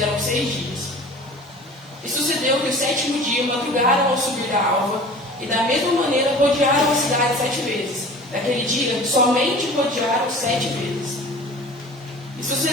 6 dias. E sucedeu que o 7º dia madrugaram ao subir da alva, e da mesma maneira rodearam a cidade 7 vezes. Naquele dia somente rodearam 7 vezes. E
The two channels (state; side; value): normal; both; correlation 0.42